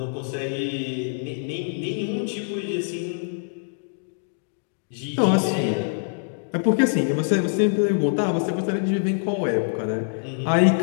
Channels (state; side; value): silent; right; digital silence